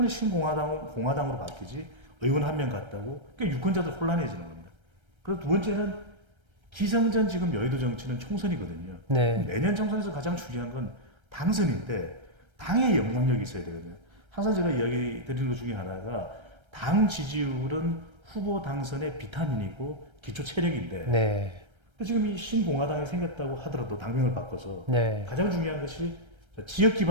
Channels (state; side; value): late; left; 1.3 ms